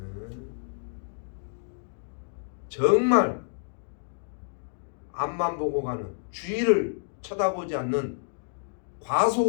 정말 앞만 보고 가는, 주위를 쳐다보지 않는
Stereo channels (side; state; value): right; silent; digital silence